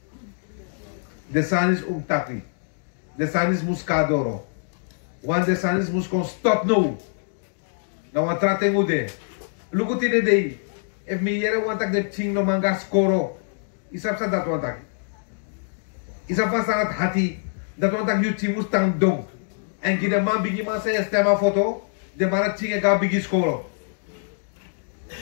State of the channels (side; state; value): right; silent; digital silence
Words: De san is taki. De san is muscadoro. Want de san is muskon stop no. Nou wat trate ngude. Lugu tine dei. If mi yere wantak de ching no manga skoro. Isap sa dat wantak. Isap sa sangat hati. Dat wantak you ching mustang dong. En gide man bigi man sa estema foto. De mara ching e ga bigi skoro.